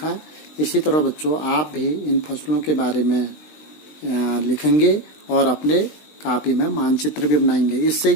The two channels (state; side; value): late; right; 20 ms